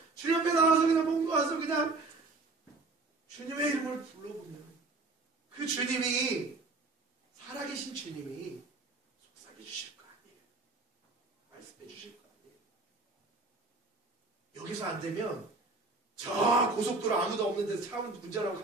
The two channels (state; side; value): quieter; left; 3.5 dB